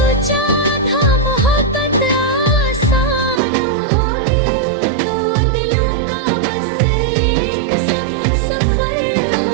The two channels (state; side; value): drops out; left; at 3.4 s